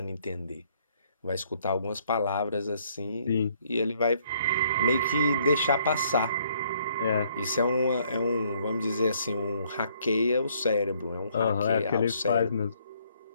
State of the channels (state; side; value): inverted; both; correlation -0.66